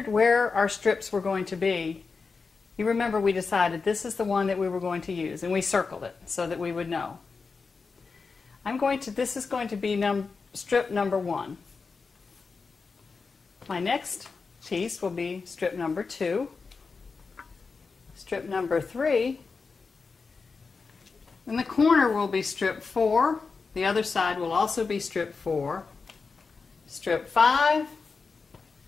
where our strips were going to be, you remember we decided this is the one that we were going to use, and we circled it so that we would know. This is going to be strip number 1. My next piece will be strip number 2, strip number 3, and the corner will be strip 4. The other side will also be strip 4, strip 5,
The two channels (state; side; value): quieter; right; 4.7 dB